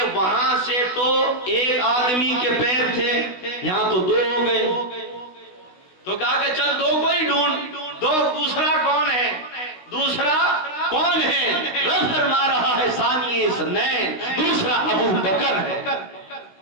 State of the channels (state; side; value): late; right; 16 ms